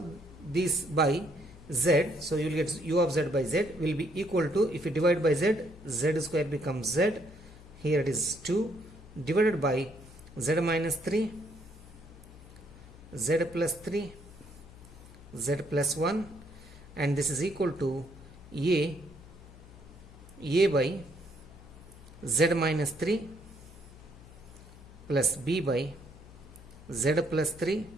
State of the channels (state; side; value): noise; left; hum, 19 dB below the sound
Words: these by z, so you will get u of z by z will be equal to, if you divide by z, z square becomes z, here it is 2, divided by z minus 3, z plus 3, z plus 1, and this is equal to a by z minus 3 plus b by z plus 3